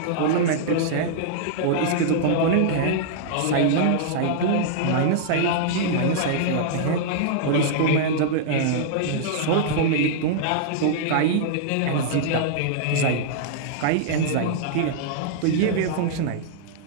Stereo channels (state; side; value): different; both; correlation -0.02